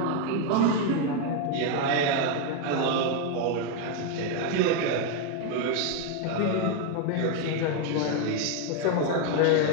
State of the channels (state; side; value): different; both; correlation 0.01